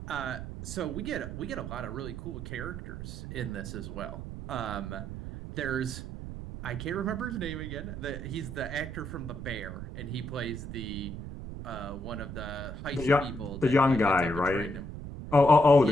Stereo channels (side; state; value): right; noise; rumble, 8 dB below the sound